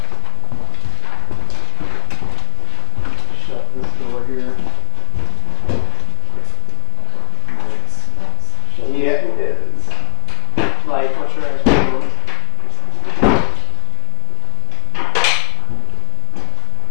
Shut this door here. Yeah, it is. Like, what's your eyes?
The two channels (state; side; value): quieter; right; 31.2 dB